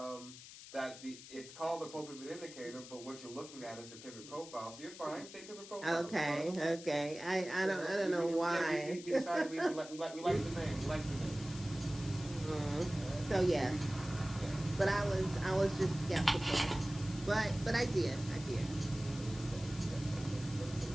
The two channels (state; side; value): noise; left; hiss, 15 dB below the sound